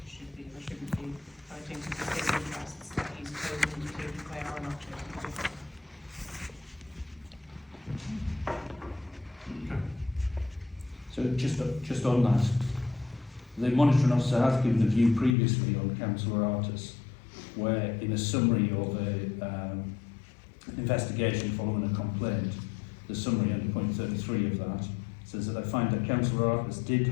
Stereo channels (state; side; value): drops out; right; at 15.4 s